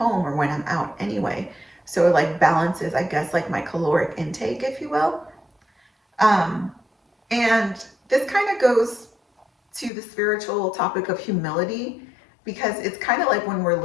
or when I'm out anyway. So it like balances, I guess, like my caloric intake, if you will. Um, and this kind of goes to the spiritual topic of humility, because it's kind of like when we're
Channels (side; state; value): right; drops out; at 9.9 s